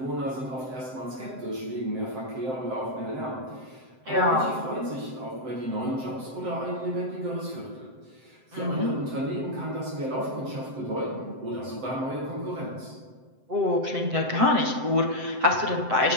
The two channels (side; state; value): left; late; 7.7 ms